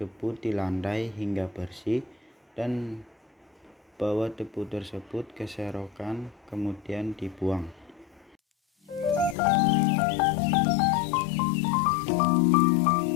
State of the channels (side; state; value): right; drops out; at 9.3 s